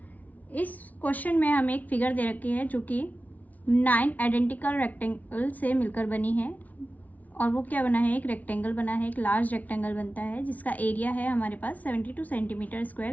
इस question में हमें एक figure दे रखी है जो कि 9 identical rectangle से मिलकर बनी है और वो क्या बना है, एक रेक्टेंगल बना है, एक लार्ज रेक्टेंगल बनता है जिसका एरिया है हमारे पास 72 सेंटीमीटर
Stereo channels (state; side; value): late; right; 0.074 ms